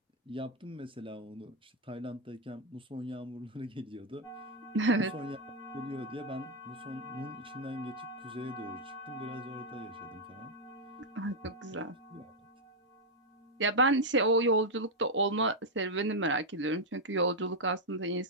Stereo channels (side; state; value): both; normal; correlation -0.01